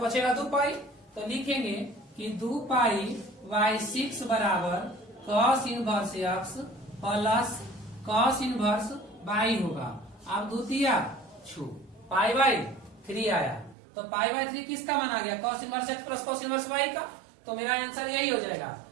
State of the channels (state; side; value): drops out; left; at 13.8 s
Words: बचेगा 2 पाई। तो लिखेंगे कि 2 पाई बाई 6 बराबर cos inverse x plus cos inverse by होगा। अब द्वितीय छू पाई बाई 3 आया, तो पाई बाई 3 किसका मान आ गया? Cos inverse x plus cos inverse by का। तो मेरा आंसर यही हो जाएगा